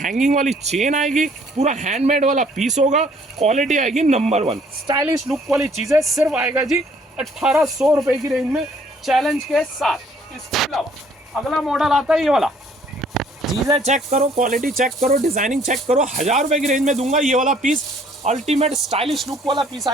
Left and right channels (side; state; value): both; normal; correlation 0.61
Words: वाली चेन आएगी, पूरा हैंडमेड वाला पीस होगा, क्वालिटी आएगी नंबर 1, स्टाइलिश लुक वाली चीज़ें, सिर्फ आएगा जी 1800 रुपये की रेंज में, चैलेंज के साथ। इसके अलावा अगला मॉडल आता है ये वाला, चीज़ें चेक करो, क्वालिटी चेक करो, डिजाइनिंग चेक करो, 1000 रुपये की रेंज में दूंगा ये वाला पीस, अल्टीमेट स्टाइलिश लुक वाला पीस